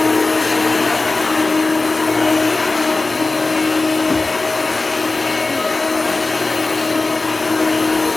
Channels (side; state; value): right; quieter; 3.4 dB